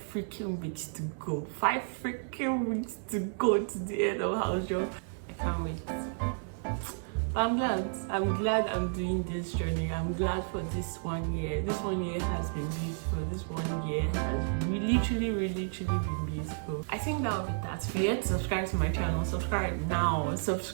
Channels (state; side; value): silent; left; digital silence